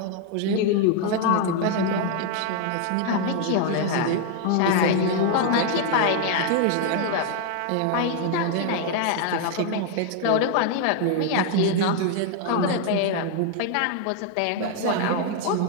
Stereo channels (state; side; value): different; both; correlation 0.00